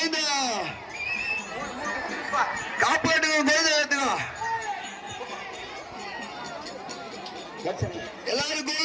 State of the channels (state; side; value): identical; both; correlation 1.00